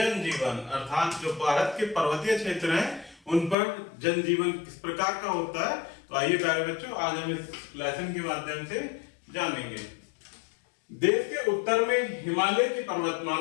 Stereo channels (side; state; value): right; drops out; at 3.6 s